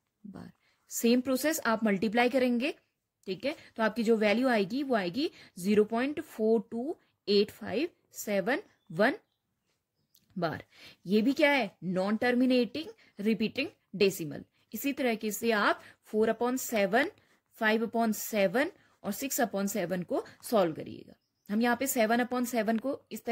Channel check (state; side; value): identical; both; correlation 1.00